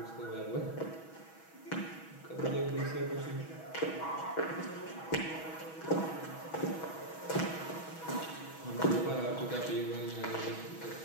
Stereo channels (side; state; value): right; late; 6.2 ms